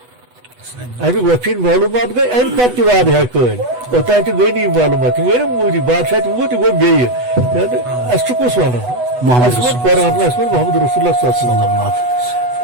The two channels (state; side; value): late; left; 8.1 ms